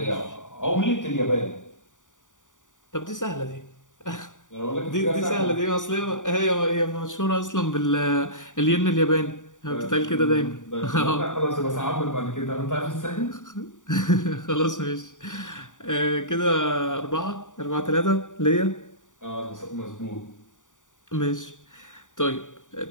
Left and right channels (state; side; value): late; right; 0.87 ms